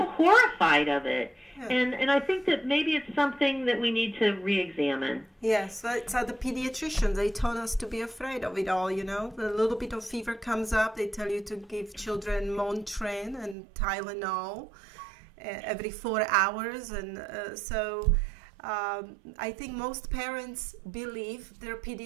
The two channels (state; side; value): drops out; left; at 13.6 s